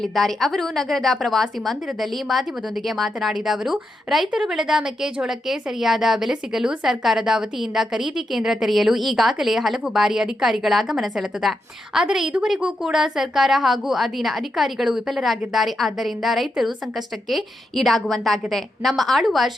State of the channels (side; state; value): both; normal; correlation 0.85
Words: ಅವರು ನಗರದ ಪ್ರವಾಸಿ ಮಂದಿರದಲ್ಲಿ ಮಾಧ್ಯಮದೊಂದಿಗೆ ಮಾತನಾಡಿದ ಅವರು, ರೈತರು ಬೆಳೆದ ಮೆಕ್ಕೆಜೋಳಕ್ಕೆ ಸರಿಯಾದ ಬೆಲೆ ಸಿಗಲು ಸರ್ಕಾರದ ವತಿಯಿಂದ ಖರೀದಿ ಕೇಂದ್ರ ತೆರೆಯಲು ಈಗಾಗಲೇ ಹಲವು ಬಾರಿ ಅಧಿಕಾರಿಗಳ ಗಮನ ಸೆಳೆದಿದೆ. ಆದರೆ ಇದುವರೆಗೂ ಕೂಡ ಸರ್ಕಾರ ಹಾಗೂ ಅಧೀನ ಅಧಿಕಾರಿಗಳು ವಿಫಲರಾಗಿದ್ದಾರೆ. ಆದ್ದರಿಂದ ರೈತರು ಸಂಕಷ್ಟಕ್ಕೆ ಈಡಾಗುವಂತಾಗಿದೆ. ನಮ್ಮ ಆಳುವ